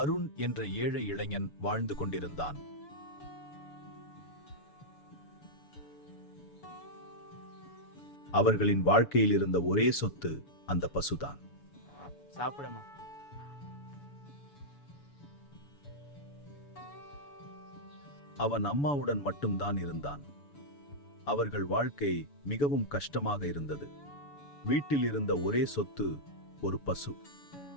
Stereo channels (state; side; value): late; right; 7.0 ms